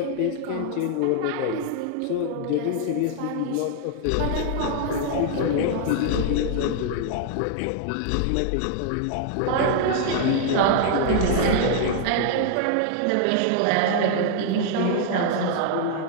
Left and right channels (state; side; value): different; both; correlation 0.00